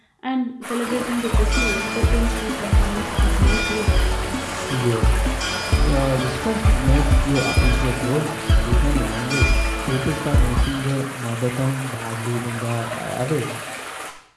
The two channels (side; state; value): both; identical; correlation 1.00